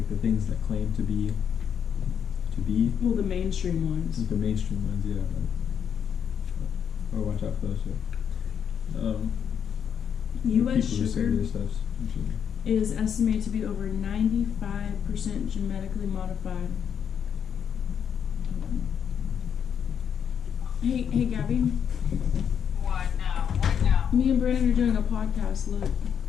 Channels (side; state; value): right; quieter; 8.0 dB